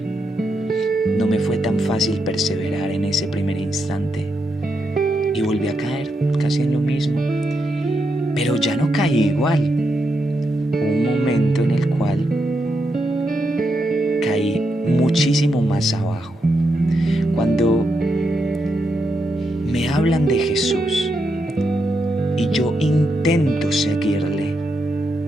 no me fue tan fácil perseverar en ese primer instante y volví a caer casi en lo mismo, pero ya no caí igual. Hubo un momento en el cual caí muchísimo más abajo. Cuando me hablan de Jesús y yo intento seguirle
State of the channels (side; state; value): both; normal; correlation 0.83